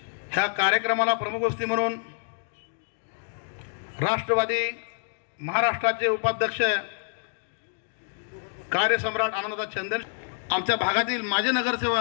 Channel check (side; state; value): right; silent; 60 dB below the other